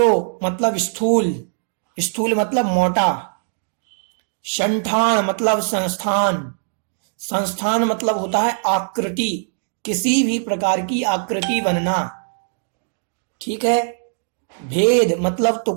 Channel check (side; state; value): left; silent; digital silence